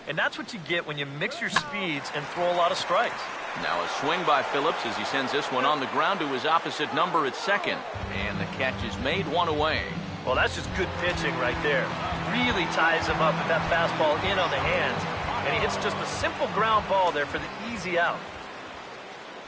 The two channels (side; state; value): both; identical; correlation 1.00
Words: And that's what you get when you mix your speeds and throw a lot of strikes. Now a swing by Phillips as he sends this one on the ground to his opposite number at 2nd. And the catch is made, 1 away. Well, that's just good pitching right there. Really ties him up with that fastball in on the hands. And he hits just a simple ground ball there for the easy out.